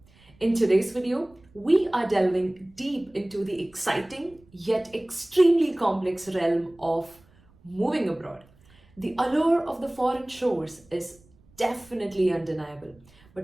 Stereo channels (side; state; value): right; noise; rumble, 29 dB below the sound